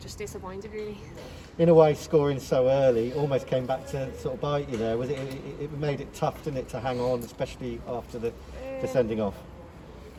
disappointed really. In a way, scoring so early almost came back to sort of bite you there. Was it made it tough, didn't it, to hang on, especially after the sending off?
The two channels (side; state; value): both; identical; correlation 1.00